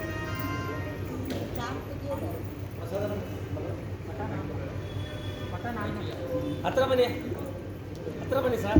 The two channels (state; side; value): identical; both; correlation 1.00